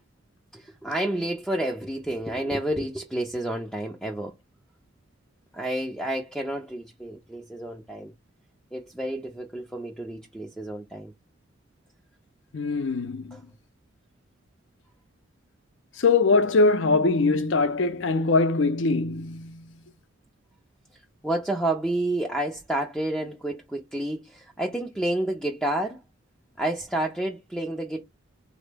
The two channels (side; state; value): both; normal; correlation 0.18